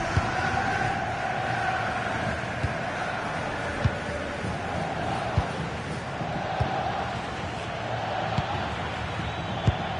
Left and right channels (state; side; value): identical; both; correlation 1.00